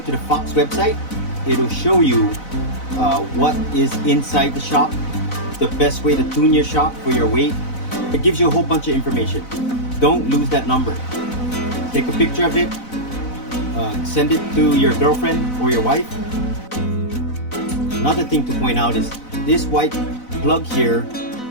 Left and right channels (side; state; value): right; late; 4.0 ms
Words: the Fox website, it'll show you what is inside the shock, the best way to tune your shock for your weight. It gives you a whole bunch of information. Don't lose that number. Take a picture of it, send it to your girlfriend or your wife. Another thing to point out is this white plug here,